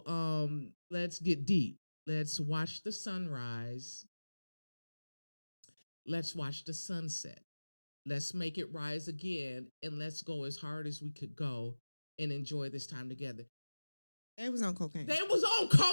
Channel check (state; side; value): inverted; both; correlation -1.00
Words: let's get deep. Let's watch the sunrise. Let's watch the sunset. Let's make it rise again, and let's go as hard as we could go and enjoy this time together. They was on cocaine.